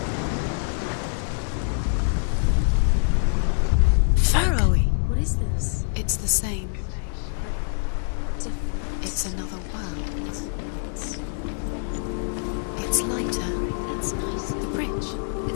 Pharaoh. What is this? It's the same. Different. It's another world. It's lighter. That's nice. The bridge.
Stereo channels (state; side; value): silent; right; digital silence